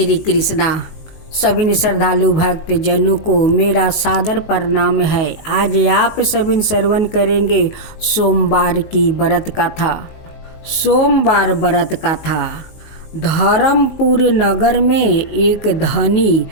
कृष्णा। सभी श्रद्धालु भक्त जनों को मेरा सादर प्रणाम है। आज आप सभी श्रवण करेंगे सोमवार की व्रत कथा। सोमवार व्रत कथा। धर्मपुर नगर में एक धनी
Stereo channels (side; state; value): right; late; 19 ms